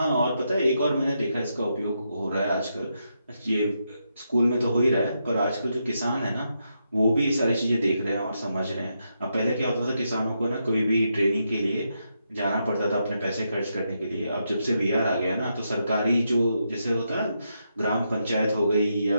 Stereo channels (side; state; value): both; inverted; correlation -0.82